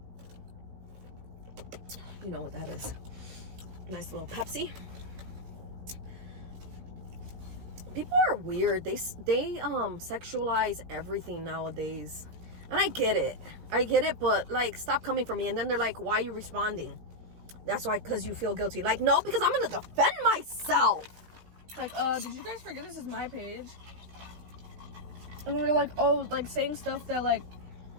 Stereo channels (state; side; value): late; left; 17 ms